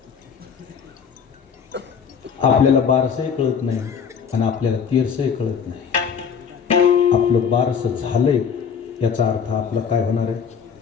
आपल्याला बारसही कळत नाही आणि आपल्याला तेरसही कळत नाही. आपलं बारसं झालंय याचा अर्थ आपलं काय होणार आहे?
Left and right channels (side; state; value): right; quieter; 6.8 dB